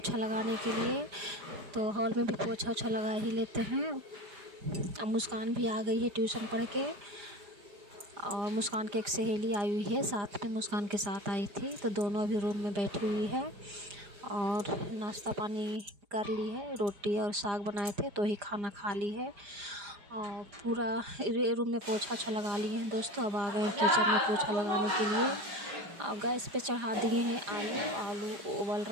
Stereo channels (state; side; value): late; left; 4.9 ms